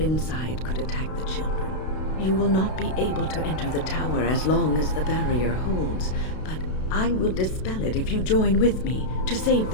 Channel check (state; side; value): late; right; 32 ms